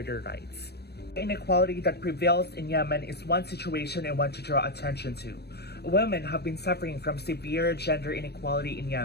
their rights. The inequality that prevails in Yemen is one situation I want to draw attention to. Women have been suffering from severe gender inequality in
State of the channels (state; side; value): late; right; 0.47 ms